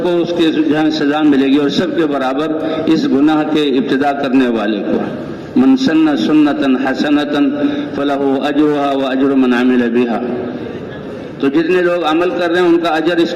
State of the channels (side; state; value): both; identical; correlation 1.00